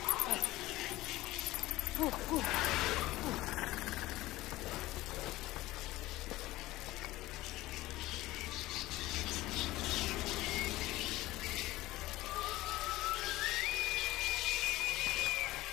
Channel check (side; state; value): right; quieter; 17.8 dB